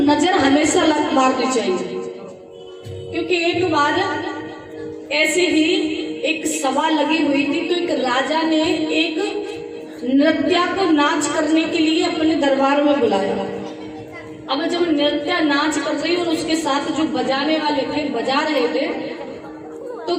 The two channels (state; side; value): identical; both; correlation 1.00